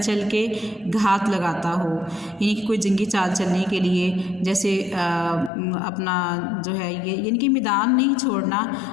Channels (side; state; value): right; drops out; at 5.5 s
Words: کے گھات لگاتا ہو، یعنی کہ کوئی جنگی چال چلنے کے لیے جیسے اپنا جو ہے یہ یعنی کہ میدان نہیں چھوڑنا،